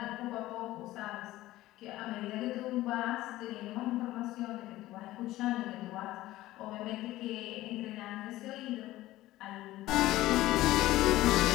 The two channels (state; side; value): quieter; right; 16.3 dB